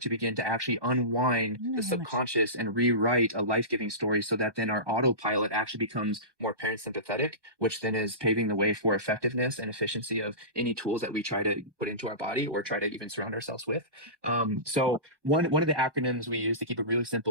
to begin to actually unwind I don't the know how much. subconscious and rewrite a life-giving story, so that then our autopilot actually becomes more parasympathetic, which then is paving the way for effectiveness and efficiency of any tools that we try to put into our body or try to even surround ourselves with. So one of the acronyms we use to keep it really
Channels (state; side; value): late; left; 1.2 ms